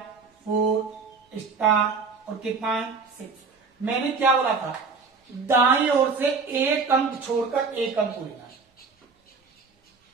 4 स्टार और कितना है 6। मैंने क्या बोला था, दाईं ओर से एक अंक छोड़कर एक अंक लेना है।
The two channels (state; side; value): quieter; left; 4.7 dB